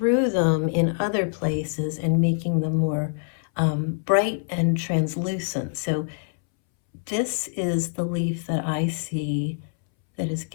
them in other places and making them more bright and translucent. So this is the leaf that I see that is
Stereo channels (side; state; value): right; silent; 62 dB below the other